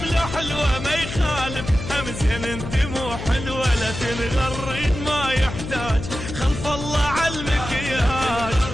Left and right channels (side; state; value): left; noise; hum, 8 dB below the sound